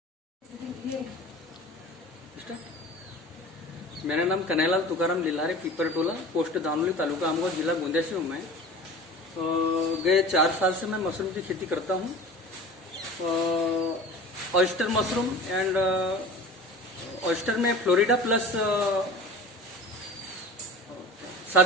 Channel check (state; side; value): normal; both; correlation 0.38